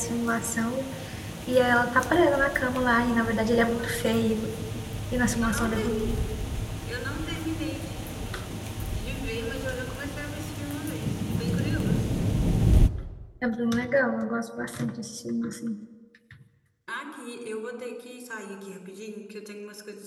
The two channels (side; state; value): both; identical; correlation 1.00